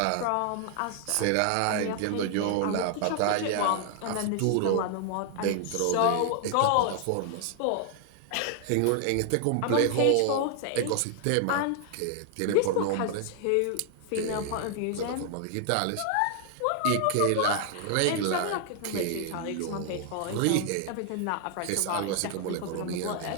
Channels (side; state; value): both; different; correlation 0.00